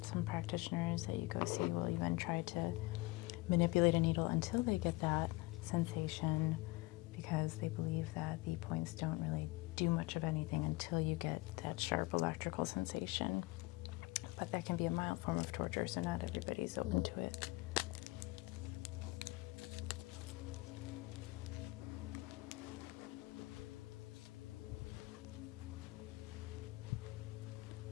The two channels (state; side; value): quieter; right; 22.1 dB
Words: Some practitioners that you go see will even try to manipulate a needle until they get that sensation because they believe that the points don't really do much of anything until you get that sharp electrical sensation. But that can be a mild form of torture, so not everybody's open to it.